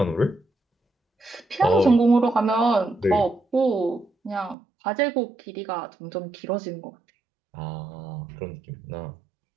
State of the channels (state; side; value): drops out; left; at 4.5 s